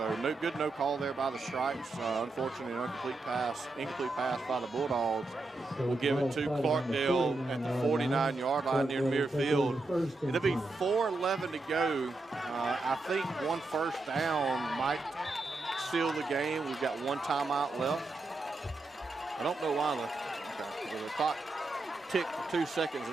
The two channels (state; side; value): quieter; left; 3.1 dB